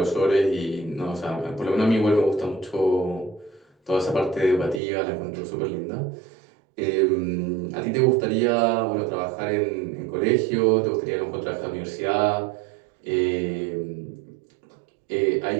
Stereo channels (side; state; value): left; drops out; at 4.8 s